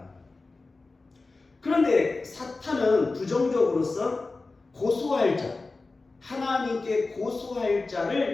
그런데 사탄은 부정적으로서 고소할 자, 하나님께 고소할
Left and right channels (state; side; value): quieter; right; 3.6 dB